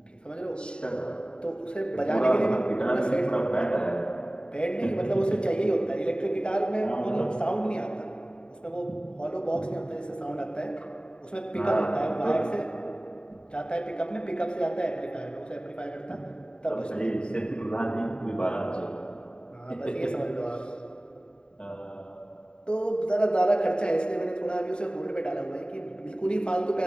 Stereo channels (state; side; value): late; right; 0.050 ms